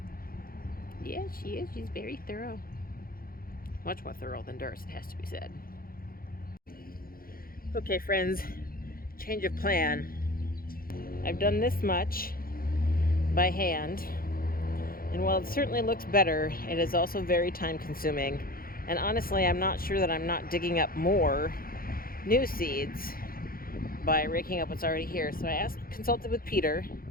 Yes, she is. She's very thorough. Much more thorough than Doris, it has to be said. Okay, friends, change of plan. I've done this much by hand, and while it certainly looks better, it is also very time consuming. And honestly, I'm not sure that I'm not digging up more new seeds by raking up what's already here. So I consulted with Peter,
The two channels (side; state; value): right; late; 0.42 ms